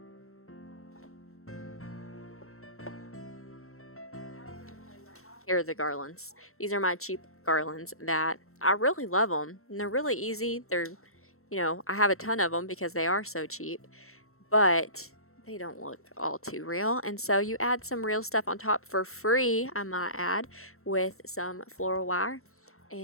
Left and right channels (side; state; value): right; late; 0.63 ms